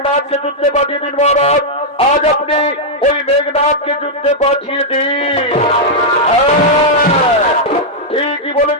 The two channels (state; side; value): normal; both; correlation -0.04